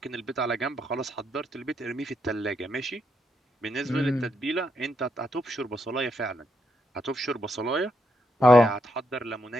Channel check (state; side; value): normal; both; correlation 0.79